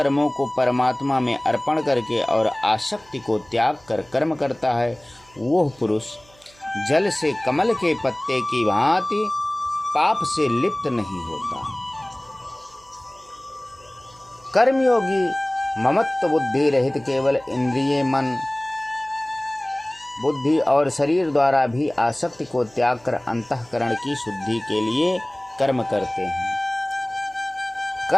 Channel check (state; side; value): noise; right; hum, 28 dB below the sound